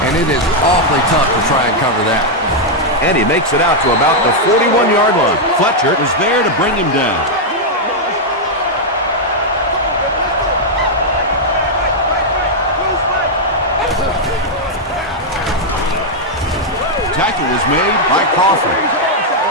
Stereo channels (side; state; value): both; normal; correlation -0.02